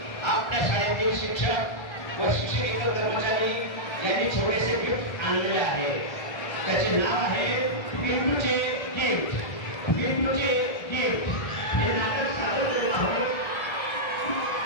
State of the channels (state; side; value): late; right; 1.3 ms